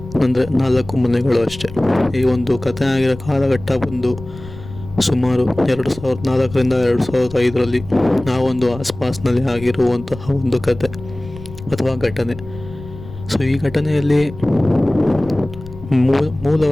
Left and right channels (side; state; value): left; noise; rumble, 15 dB below the sound